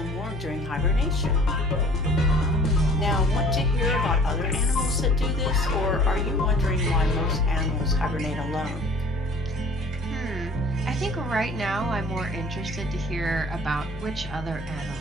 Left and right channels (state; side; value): normal; both; correlation 0.50